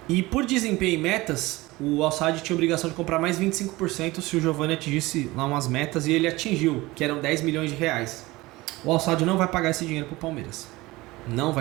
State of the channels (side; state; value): left; quieter; 20.4 dB